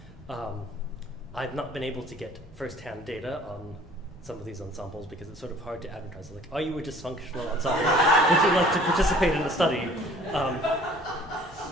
I've not been able to get first-hand data on some of these ensembles because it's sort of hard to advertise. Like, are you a dysfunctional ensemble? Would you like to participate in the study?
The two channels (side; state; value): both; normal; correlation 0.52